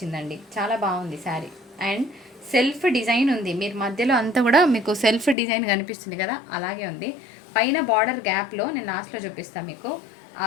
చాలా బాగుంది శారీ. అండ్ సెల్ఫ్ డిజైన్ ఉంది, మీరు మధ్యలో అంతా కూడా మీకు సెల్ఫ్ డిజైన్ కనిపిస్తుంది కదా, అలాగే ఉంది. పైన బార్డర్ గ్యాప్లో నేను లాస్ట్లో చూపిస్తాను మీకు. ఆ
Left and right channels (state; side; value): drops out; right; at 5.4 s